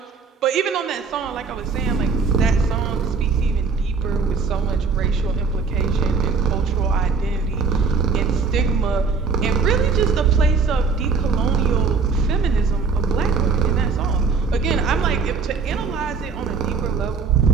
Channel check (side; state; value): left; quieter; 5.0 dB